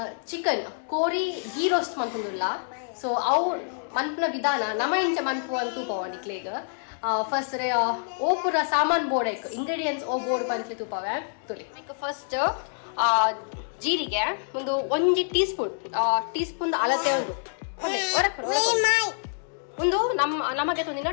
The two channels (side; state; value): right; silent; digital silence